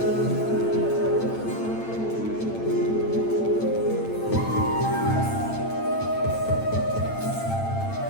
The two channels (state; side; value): late; right; 8.9 ms